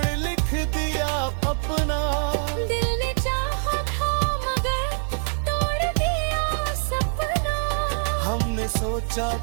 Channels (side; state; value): left; silent; digital silence